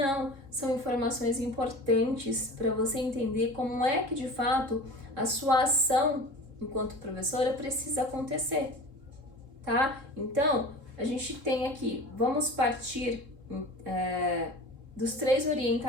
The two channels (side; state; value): left; late; 3.7 ms